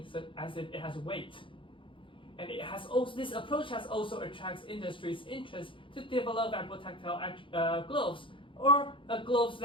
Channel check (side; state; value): right; late; 0.25 ms